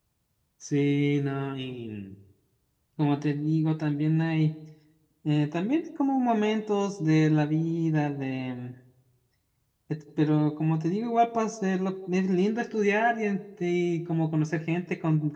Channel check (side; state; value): both; identical; correlation 1.00